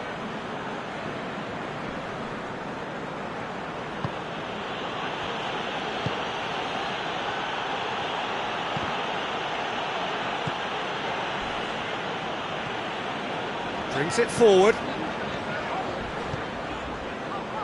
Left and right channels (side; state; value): right; noise; hum, 25 dB below the sound